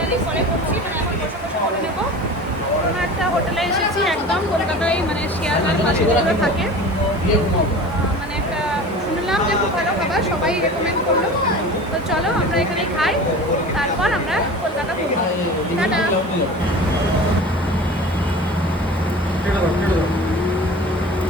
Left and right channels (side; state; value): both; normal; correlation 0.37